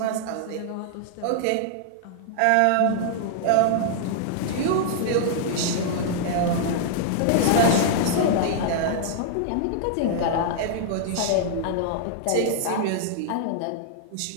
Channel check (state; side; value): different; both; correlation -0.01